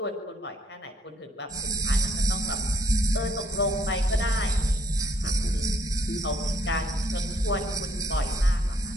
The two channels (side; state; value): both; normal; correlation 0.67